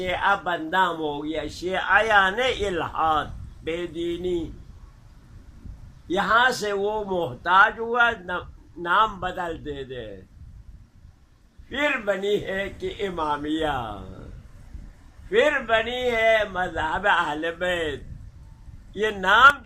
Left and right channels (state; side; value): identical; both; correlation 1.00